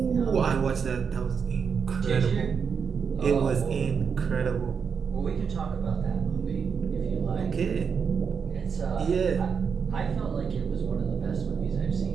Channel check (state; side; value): quieter; left; 6.3 dB